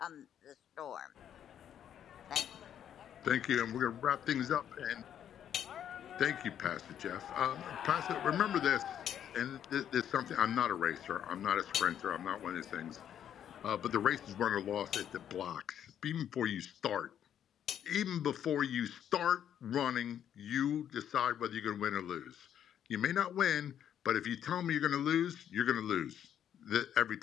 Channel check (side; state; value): right; quieter; 9.7 dB